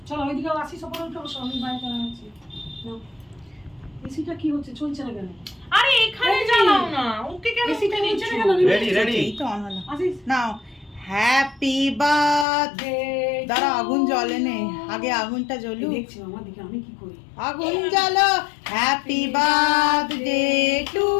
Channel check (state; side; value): drops out; right; at 12.5 s